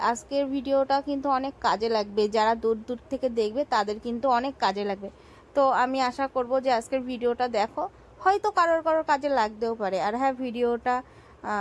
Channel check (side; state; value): both; identical; correlation 1.00